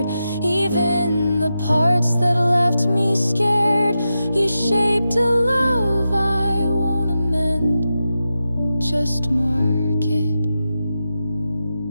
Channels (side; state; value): both; inverted; correlation -0.90